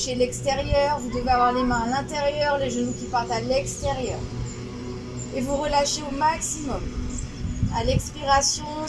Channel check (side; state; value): both; identical; correlation 1.00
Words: l'extérieur. Vous devez avoir les mains à l'intérieur, les genoux qui partent à l'extérieur. Et vous relâchez au maximum. À l'expiration,